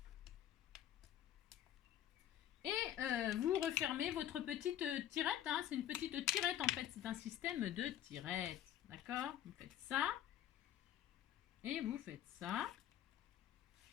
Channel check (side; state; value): right; quieter; 11.4 dB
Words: et vous refermez votre petite tirette. Hein, c'est une petite tirette en fait. C'est un système de tirette. D'accord? Vous faites ça. Et vous faites ça.